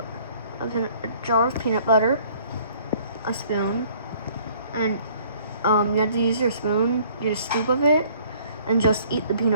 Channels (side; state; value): both; inverted; correlation -0.57